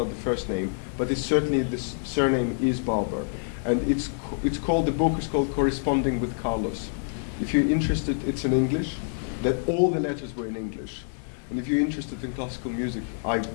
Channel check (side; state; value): right; silent; 60 dB below the other